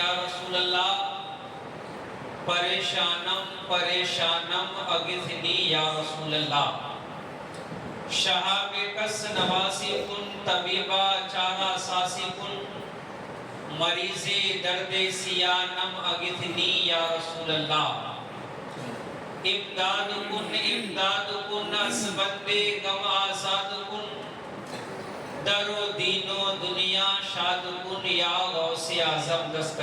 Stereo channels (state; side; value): identical; both; correlation 1.00